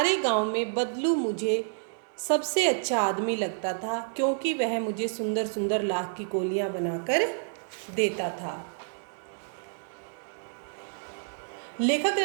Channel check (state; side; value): silent; left; digital silence